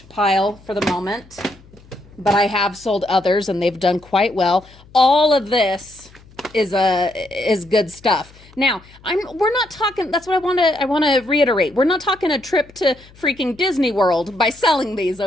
pile for the moment. But I have sold others and they've done quite well. All of this is good stuff. Now, we're not talking, that's what I want to reiterate. We're not talking a trip to freaking Disney World by selling these,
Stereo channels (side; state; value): left; noise; hum, 25 dB below the sound